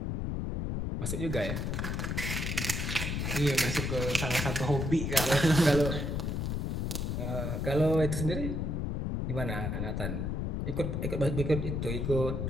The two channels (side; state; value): left; noise; rumble, 1 dB below the sound